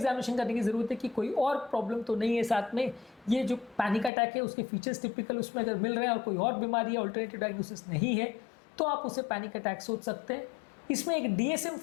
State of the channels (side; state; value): right; drops out; at 4.1 s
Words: करने की ज़रूरत है कि कोई और प्रॉब्लम तो नहीं है साथ में। ये जो पैनिक अटैक है उसके फीचर्स टिपिकल उसमें अगर मिल रहे हैं और कोई और बीमारी या अल्टरनेटिव डायग्नोसिस नहीं है तो आप उसे पैनिक अटैक सोच सकते हैं। इसमें एक